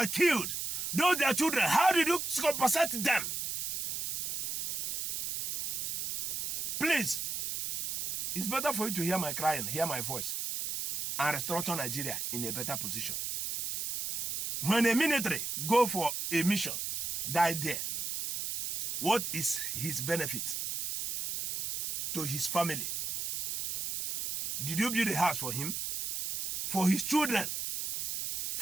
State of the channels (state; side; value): noise; right; hiss, 2 dB below the sound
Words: killed, those their children, how did you compensate them? Please, it's better for you to hear my crying, hear my voice, and restructure Nigeria in a better position. When a military go for a mission, die there, what is his benefit to his family? Did you build a house for him, for his children,